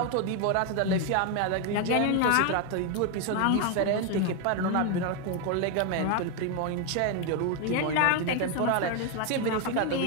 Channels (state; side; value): different; both; correlation 0.01